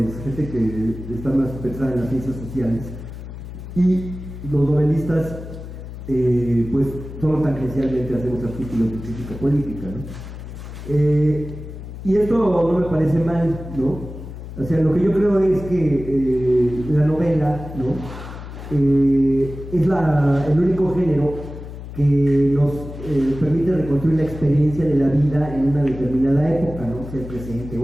gente que está más pensada en las ciencias sociales, y los novelistas pues solo tangencialmente hacemos artículos de crítica política, ¿no? Y esto no me parece mal, ¿no? O sea, lo que yo creo es que la novela, ¿no? Es el único género que nos permite reconstruir la experiencia de la vida en una determinada época, ¿no? Sea el presente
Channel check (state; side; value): noise; left; hum, 11 dB below the sound